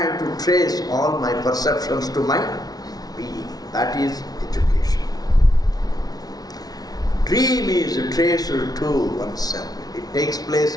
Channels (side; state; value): right; late; 0.19 ms